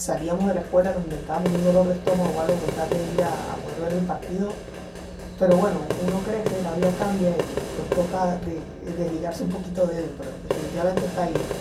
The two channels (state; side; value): identical; both; correlation 1.00